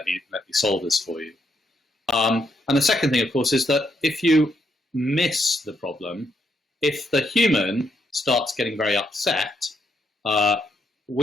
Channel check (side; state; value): both; normal; correlation 0.77